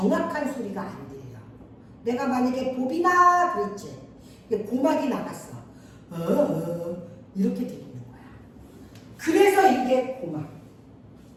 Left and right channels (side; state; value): both; identical; correlation 1.00